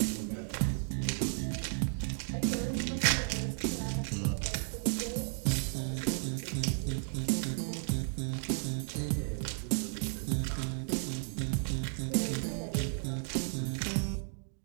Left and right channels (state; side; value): silent; left; 55 dB below the other